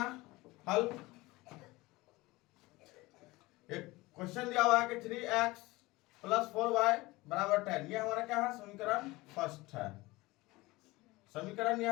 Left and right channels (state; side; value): quieter; right; 21.0 dB